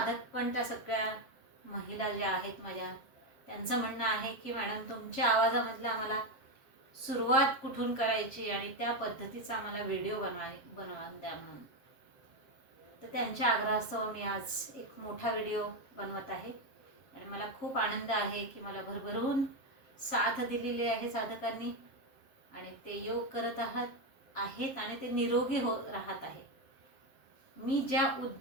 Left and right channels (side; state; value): right; late; 7.5 ms